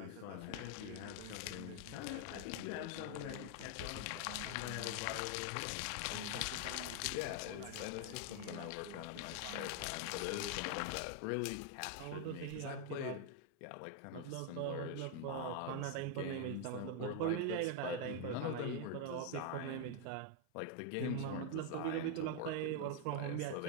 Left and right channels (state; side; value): different; both; correlation 0.00